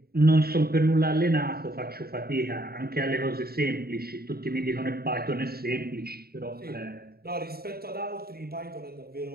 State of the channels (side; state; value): left; late; 0.45 ms